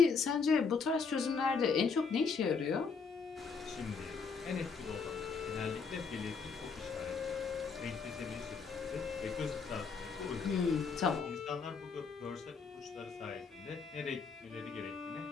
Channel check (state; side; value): quieter; right; 5.2 dB